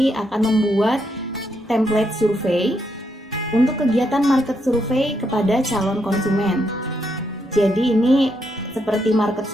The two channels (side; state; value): both; normal; correlation 0.79